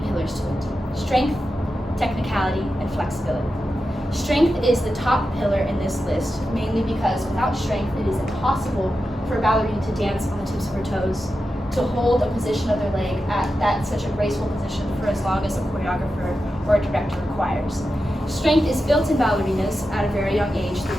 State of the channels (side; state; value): both; normal; correlation 0.90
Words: pillars to it: strength, technicality, and flexibility. Strength is the top pillar in this list, mainly because without strength, it is impossible for a ballerina to dance on the tips of her toes, to hold a position of their leg at such a graceful position for as long as a choreographer or a director requires. Strength is built in ballerinas at a very young age through